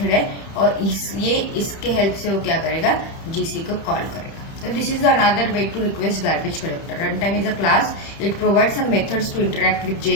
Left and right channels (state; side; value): late; right; 31 ms